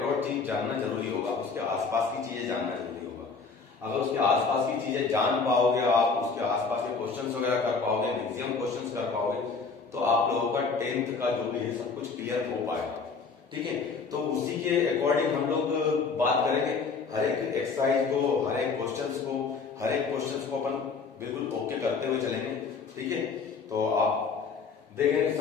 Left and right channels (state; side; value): quieter; right; 4.8 dB